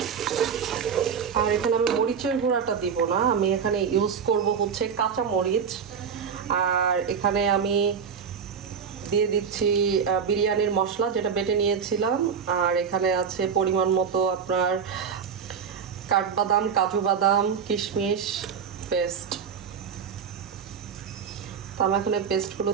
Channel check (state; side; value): quieter; left; 6.8 dB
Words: আর এখানে আমি মরিচের গুঁড়াটা দিব না, আমি এখানে ইউজ করব হচ্ছে কাঁচা মরিচ। আর এখানে আমি দিয়ে দিচ্ছি বিরিয়ানির মশলা যেটা বেটে নিয়েছিলাম। আর এখানে আছে পরিমাণ মতো আপনার কাঠবাদাম, কাজু বাদাম, কিশমিশ পেস্ট। তো আমি এখন এই পেস্টগুলো